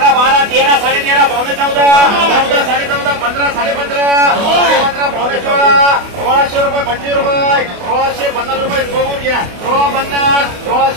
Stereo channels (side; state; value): left; late; 28 ms